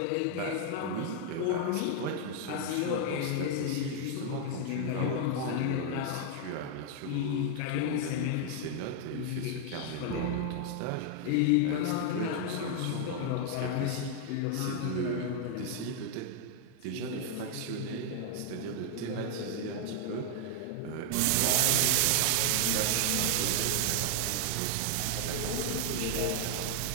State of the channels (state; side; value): different; both; correlation 0.00